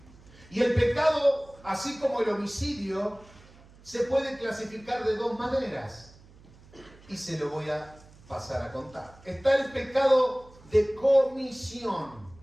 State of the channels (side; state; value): right; noise; hum, 24 dB below the sound